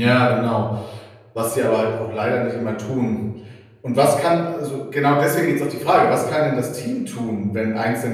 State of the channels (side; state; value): both; identical; correlation 1.00